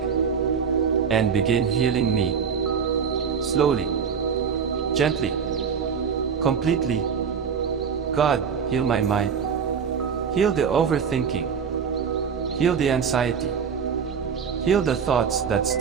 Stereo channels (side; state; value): left; quieter; 6.6 dB